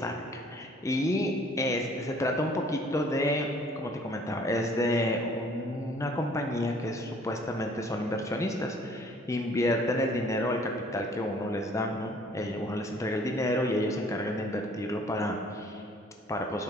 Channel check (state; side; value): normal; both; correlation 0.56